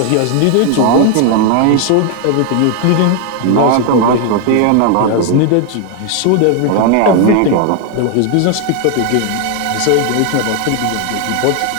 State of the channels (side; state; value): both; different; correlation 0.00